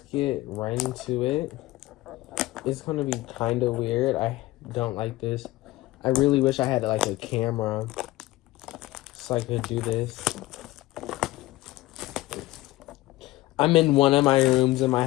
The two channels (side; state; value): right; quieter; 17.9 dB